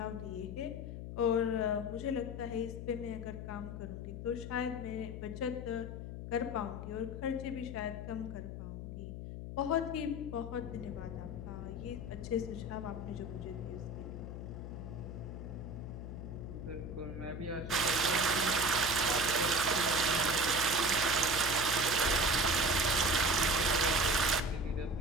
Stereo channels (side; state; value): left; noise; hum, 7 dB below the sound